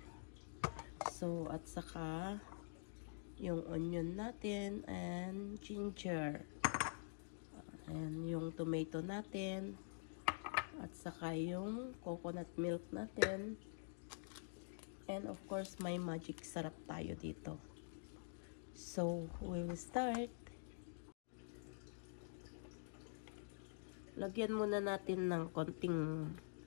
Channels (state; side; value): silent; right; digital silence